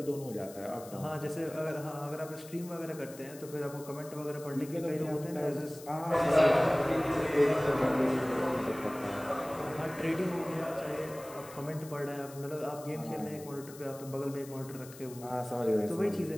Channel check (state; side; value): noise; left; hiss, 18 dB below the sound